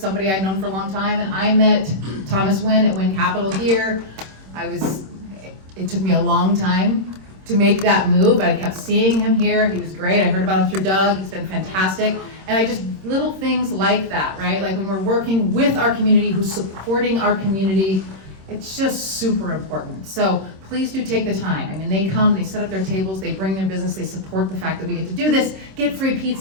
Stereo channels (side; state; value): left; late; 26 ms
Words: I'd known for a long time, and I met Thomas Wynn at Wynn Capital here. It took me a long time to make that move, but I kept seeing him here. He was great. I heard about him through Doug. He's been fantastic. And little things like that, right? Like when we're working with our community, who's supporting our community, it's just super important. So please do take the time. I mean, they come, they set up their tables, they bring their business, they support the fact that we get to do this, get free